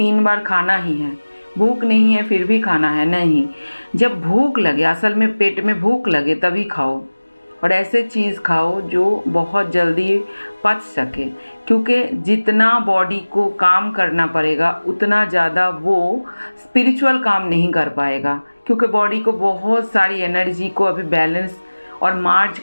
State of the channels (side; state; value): both; inverted; correlation -1.00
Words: बार खाना ही है, भूख नहीं है फिर भी खाना है, नहीं। जब भूख लगे, असल में पेट में भूख लगे तभी खाओ, और ऐसे चीज़ खाओ जो बहुत जल्दी पच सके, क्योंकि जितना बॉडी को काम करना पड़ेगा उतना ज़्यादा वो स्पिरिचुअल काम नहीं कर पाएगा, क्योंकि बॉडी को बहुत सारी एनर्जी को अभी बैलेंस और मार्ज